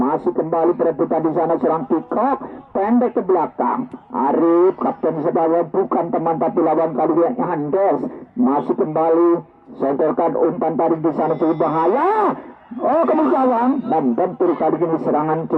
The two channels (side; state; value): both; identical; correlation 1.00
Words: kembali perebutan di sana serang Kikok, pendek ke belakang, Arif, kapten sebaya bukan teman tapi lawan kali ini Andes, masih kembali, sodorkan umpan tarik di sana cukup bahaya. Oh, kemudian membentur kali ini serangan